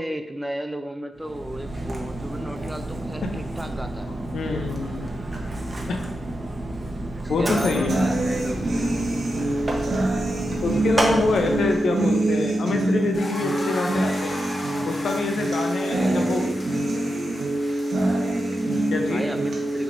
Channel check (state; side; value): normal; both; correlation 0.88